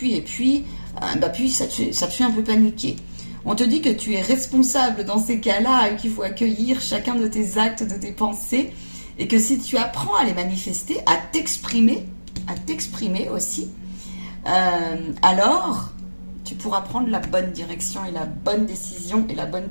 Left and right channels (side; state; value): both; inverted; correlation -1.00